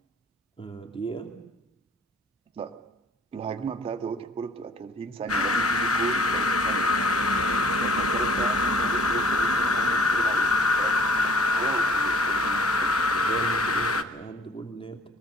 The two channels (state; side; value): normal; both; correlation 0.54